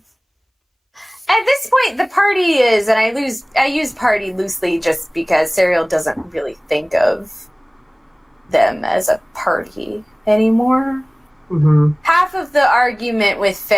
At this point, the party is, and I use party loosely just because Serial doesn't really think of them as a party anymore. Mm-hmm. Half of the argument with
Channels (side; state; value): both; identical; correlation 1.00